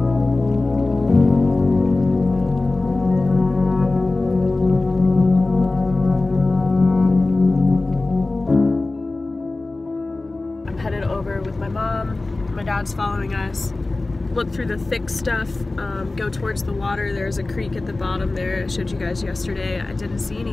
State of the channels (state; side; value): quieter; right; 3.1 dB